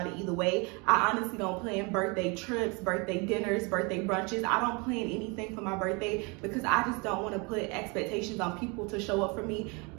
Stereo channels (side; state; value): left; quieter; 29.7 dB